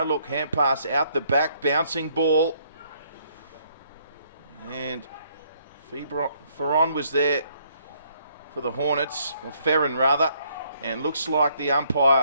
hand pass out the back, bouncing ball. And Ferron was there for the Hornets, or Ferron rather, and looks like the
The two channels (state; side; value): inverted; both; correlation -0.68